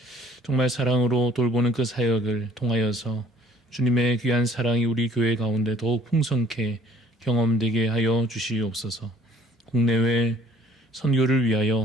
정말 사랑으로 돌보는 그 사역을 통하여서 주님의 귀한 사랑이 우리 교회 가운데 더욱 풍성케 경험되게 하여 주시옵소서. 국내외 선교를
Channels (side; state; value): both; normal; correlation 0.58